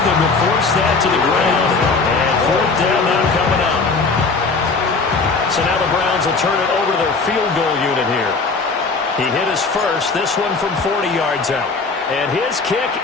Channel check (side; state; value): right; quieter; 4.2 dB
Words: him to force that to the ground. And 4th down now coming up. So now the Browns will turn it over to their field goal unit here. He hit his first, this one from 40 yards out. And his kick